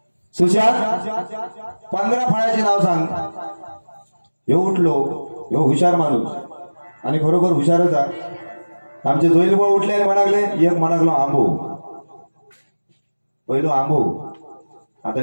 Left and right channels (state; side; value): inverted; both; correlation -1.00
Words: सुशांत 15 फळांची नाव सांग. हे उठलो, हे हुशार माणूस आणि खरोखर हुशारच आहे. आमचे जोईल बुवा उठले आणि म्हणाले, एक म्हणागलो आंबो. पहिलो आंबो, आता